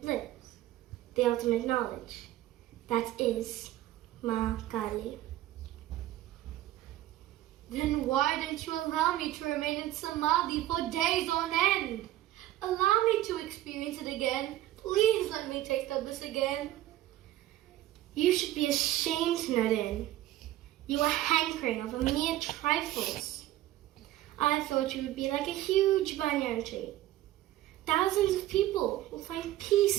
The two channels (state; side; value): quieter; left; 14.5 dB